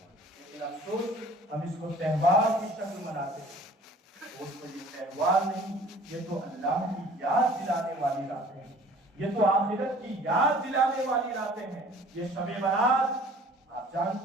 لیکن افسوس، ہم اس کو تہوار کی شکل مناتے ہیں۔ دوستو، یہ تہوار نہیں، یہ تو اللہ کی یاد دلانے والی راتیں ہیں۔ یہ تو آخرت کی یاد دلانے والی راتیں ہیں. یہ شب برات آپ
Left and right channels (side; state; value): both; normal; correlation 0.50